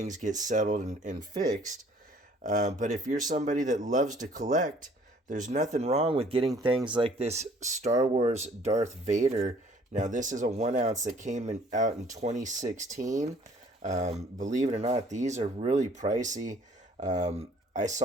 get settled and fixed. But if you're somebody that loves to collect, there's nothing wrong with getting things like this Star Wars Darth Vader. Now, this is a 1 ounce that came out in 2016. Believe it or not, these are really pricey. I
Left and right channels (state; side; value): normal; both; correlation 0.57